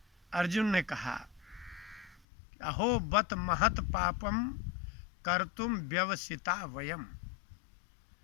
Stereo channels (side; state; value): right; drops out; at 2.2 s